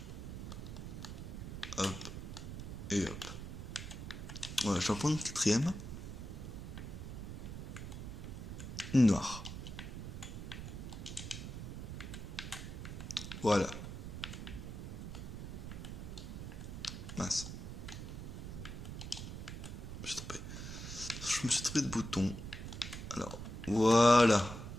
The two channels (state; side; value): noise; right; rumble, 7 dB below the sound